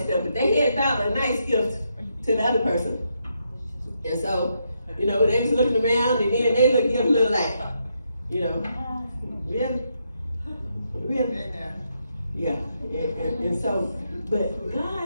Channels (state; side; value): inverted; both; correlation -0.79